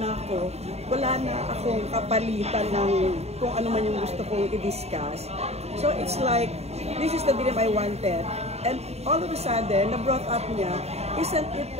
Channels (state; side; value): late; left; 0.31 ms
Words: ako, wala na akong kapalitan ng kung ano man yung gusto kong i-discuss. So, it's like, this is the dream I wanted. And all of a sudden, na-brought up niya, isn't it